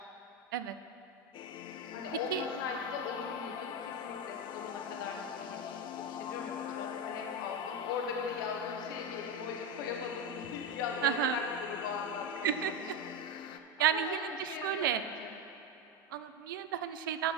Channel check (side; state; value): both; normal; correlation 0.12